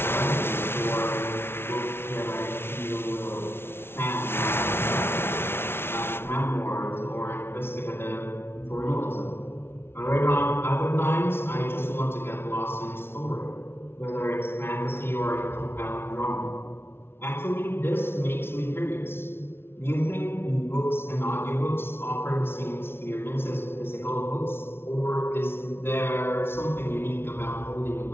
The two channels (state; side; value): late; right; 0.12 ms